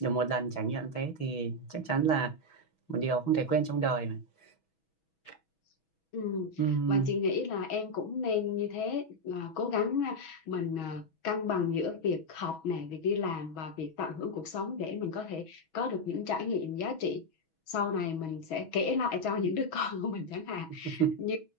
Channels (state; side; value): late; right; 6.2 ms